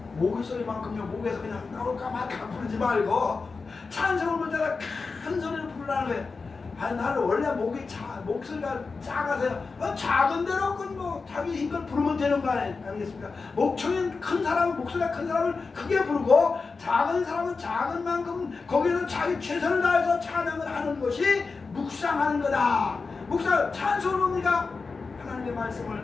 목의 소리만큼요, 목에서 그냥 나올까 말까 부르지 말고 찬송을 부를 때가 큰 소리를 부르라는 거예요. 아니 나는 원래 목소리가 작아서요. 작은 대로 뭐 자기 힘껏 부르면 되는 거 아니겠습니까? 목청이 큰 사람은 목소리가 큰 사람을 크게 부르고 작은 사람은 작은 만큼 거기서 자기 최선을 다해서 찬양을 하는 것이 묵상하는 거다. 묵상 찬송은 뭡니까? 하나님의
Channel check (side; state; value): right; quieter; 4.4 dB